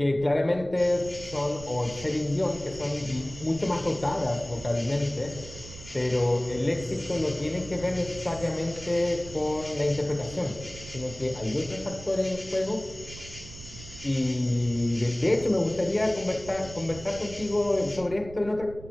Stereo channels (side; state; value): right; noise; rumble, 15 dB below the sound